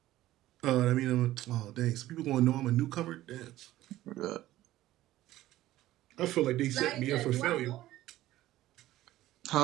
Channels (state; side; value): quieter; left; 15.2 dB